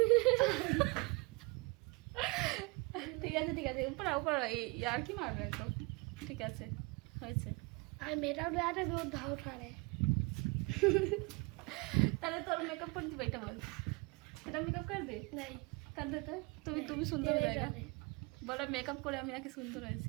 ঠিক আছে ঠিক আছে, উপর উপর আর কি মারবে তো, ঠিক আছে হয়েছে। আর মেয়েটাও রাতে দুধ ধাও ঠারে। তাহলে তোর মেকআপ করে দিবে, এটা বল, এটা মেকআপ করে দে। নাই कर देते তুমি সুন্দর হয়ে যায়গা, বলা মেকআপ করে আমি নাকি সুন্দর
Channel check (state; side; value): quieter; left; 27.5 dB